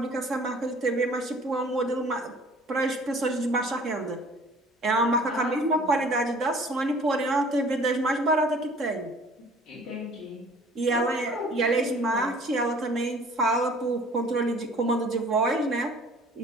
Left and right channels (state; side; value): normal; both; correlation 0.51